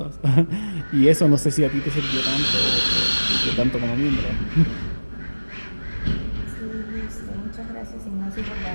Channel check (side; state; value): both; inverted; correlation -1.00